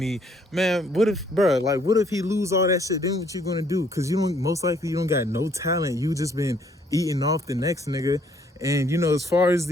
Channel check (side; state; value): both; normal; correlation 0.65